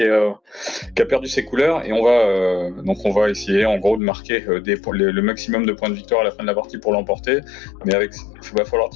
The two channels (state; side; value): drops out; right; at 4.0 s